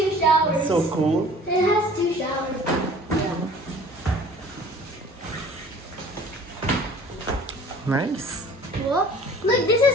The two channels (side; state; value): both; normal; correlation 0.49